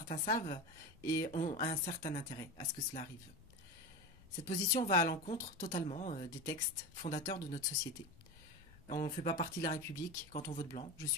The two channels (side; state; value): left; noise; rumble, 22 dB below the sound